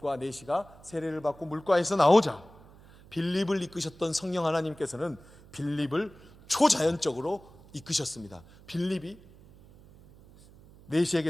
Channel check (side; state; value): right; noise; hum, 23 dB below the sound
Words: 내시가 세례를 받고 물가에서 나오자 빌립을 이끄셨던 성령 하나님께서는 빌립을 초자연적으로 이끄셨습니다. 빌립이 내시에게